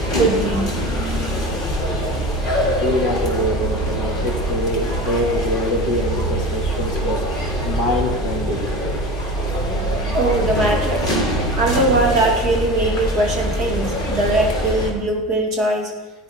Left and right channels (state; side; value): normal; both; correlation 0.33